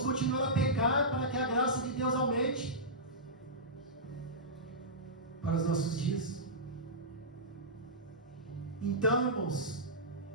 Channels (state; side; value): normal; both; correlation -0.15